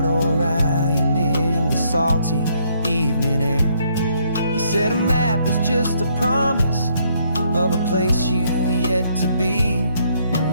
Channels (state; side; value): inverted; both; correlation -0.70